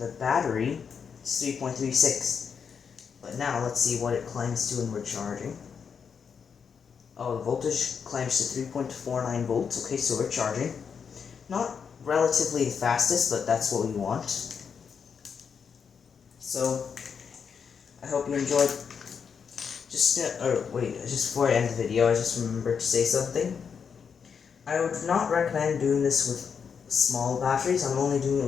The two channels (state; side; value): quieter; right; 6.6 dB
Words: battery, it's 3.36. But now let's see what it climbs to when we're charging. Oh, the voltage climbs to 3.49 volts. Okay, so we're charging. Not relatively the fastest, but that's what we want. So, I hope you enjoyed. Just before I end the video, I just remembered to say something. I would not recommend doing this with small batteries. I'm only doing it